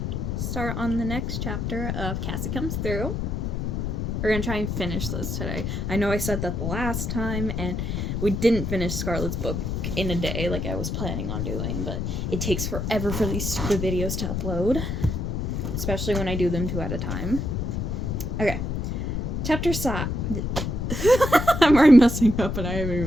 start on the next chapter of Cassie Comes Through. We're gonna try and finish this today. I know I said that the last time, and we didn't finish Scarlett's book in a day like I was planning on doing, but it takes forever for these stupid videos to upload, especially when I do them 2 at a time. Okay. Chapter 5. I'm already messing up and I haven't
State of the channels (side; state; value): left; noise; rumble, 2 dB below the sound